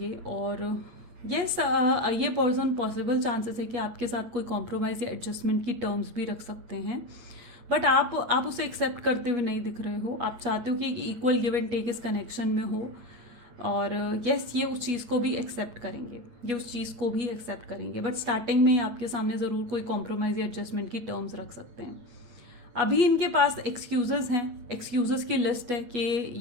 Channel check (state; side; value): late; left; 8.3 ms